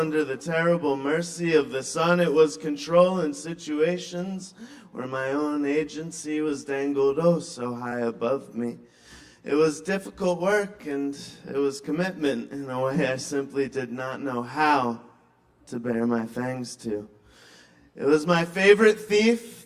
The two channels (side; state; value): both; identical; correlation 1.00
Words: the terrible mercy of the sun. It was control in situations where my own agency was dangled oh so high above me. It was difficult work and it was commitment in a way I simply did not know how to bare my fangs to. It was my favorite